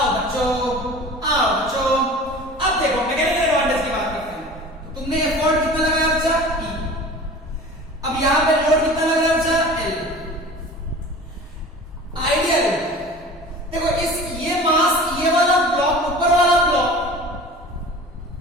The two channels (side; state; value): both; normal; correlation 0.40